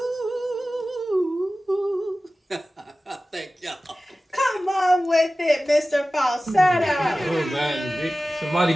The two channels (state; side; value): normal; both; correlation 0.96